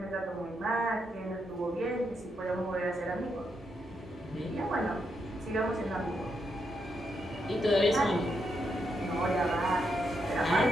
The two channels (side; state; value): both; normal; correlation 0.81